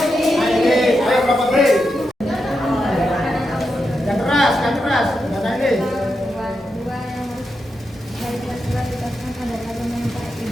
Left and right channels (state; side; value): normal; both; correlation 0.86